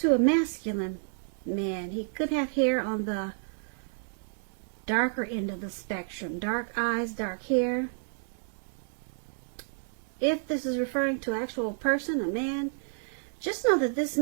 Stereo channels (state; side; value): silent; left; digital silence